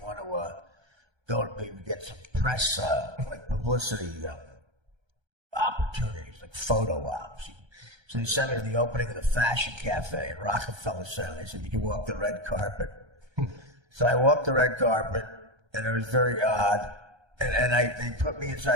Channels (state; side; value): late; left; 1.3 ms